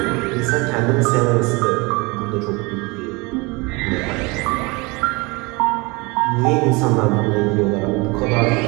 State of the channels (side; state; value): left; quieter; 26.4 dB